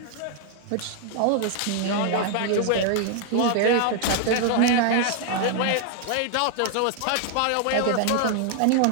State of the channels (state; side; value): different; both; correlation 0.00